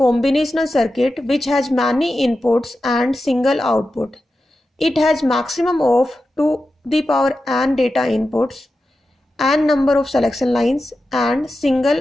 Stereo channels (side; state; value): both; normal; correlation 0.92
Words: circuit which has many inputs and single output. It has maximum of 2 the power n data inputs, n number of selection lines and